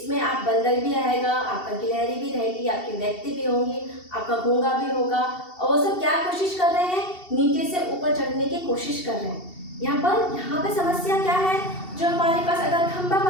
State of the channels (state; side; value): late; right; 2.7 ms